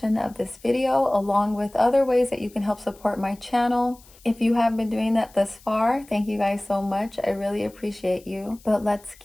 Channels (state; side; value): noise; left; hiss, 26 dB below the sound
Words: of this video, along with other ways that you can help support my channel. If you have been doing that thus far, thank you guys so much. I really appreciate you. But let's